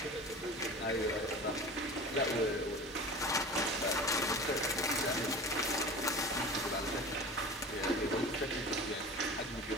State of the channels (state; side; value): normal; both; correlation 0.36